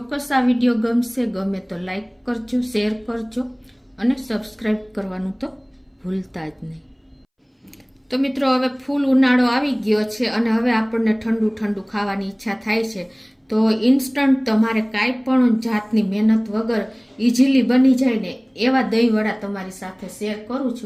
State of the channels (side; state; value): both; identical; correlation 1.00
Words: આ વિડીયો ગમશે। ગમે તો લાઈક કરજો, શેર કરજો અને સબસ્ક્રાઈબ કરવાનું તો ભૂલતા જ નહીં। તો મિત્રો હવે ફૂલ ઉનાળો આવી ગયો છે અને હવે આપણને ઠંડુ ઠંડુ ખાવાની ઈચ્છા થાય છે। તો ઇન્સ્ટન્ટ તમારે કાંઈ પણ જાતની મહેનત વગર ઇઝીલી બની જાય ને એવા દહીંવડા તમારી સાથે શેર કરું